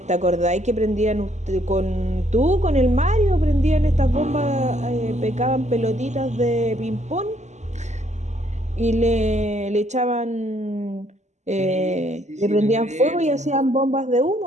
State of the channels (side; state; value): left; late; 0.33 ms